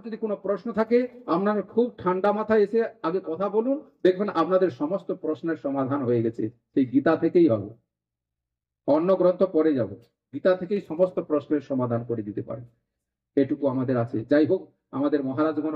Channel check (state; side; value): identical; both; correlation 1.00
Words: যদি কোনো প্রশ্ন থাকে, আপনারা খুব ঠান্ডা মাথায় এসে আগে কথা বলুন, দেখবেন আপনাদের সমস্ত প্রশ্নের সমাধান হয়ে গেছে। সেই গীতা থেকেই হবে, অন্য গ্রন্থ পরে যাব, গীতা থেকেই সমস্ত প্রশ্নের সমাধান করে দিতে পারে। এটুকু আমাদের আছে। যাই হোক, আমাদের মহারাজগণ